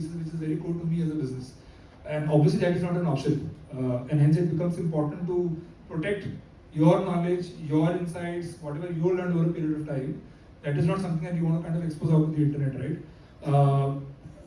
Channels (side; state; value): both; identical; correlation 1.00